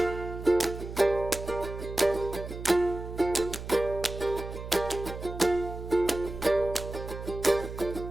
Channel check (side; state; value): right; noise; hum, 9 dB below the sound